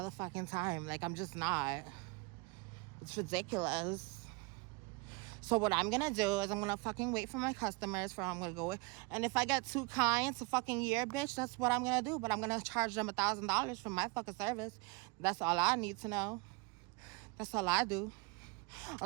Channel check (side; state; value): left; quieter; 27.1 dB